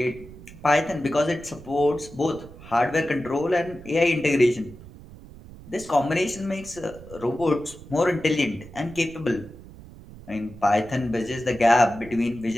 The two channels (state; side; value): noise; right; rumble, 18 dB below the sound